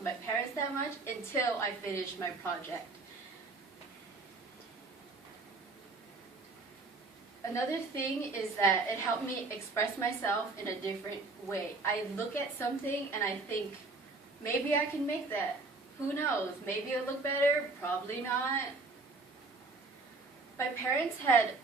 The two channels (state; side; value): quieter; left; 3.6 dB